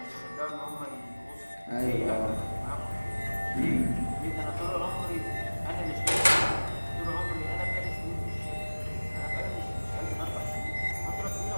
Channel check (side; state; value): both; inverted; correlation -1.00